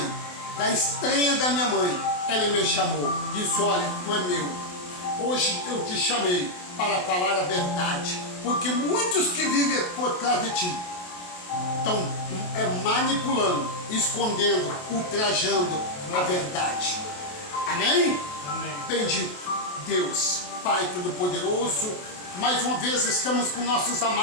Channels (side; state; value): right; late; 28 ms